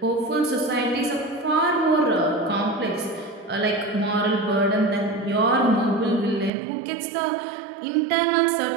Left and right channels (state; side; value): drops out; left; at 6.5 s